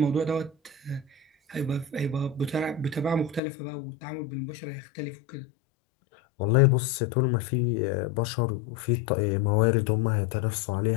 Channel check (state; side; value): drops out; right; at 3.4 s